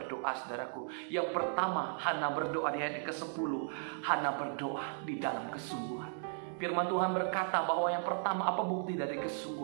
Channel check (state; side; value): silent; left; digital silence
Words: saudaraku? Yang pertama, Hana berdoa di ayat ke-10. Hana berdoa di dalam kesungguhan. Firman Tuhan berkata bahwa yang pertama, apa bukti dari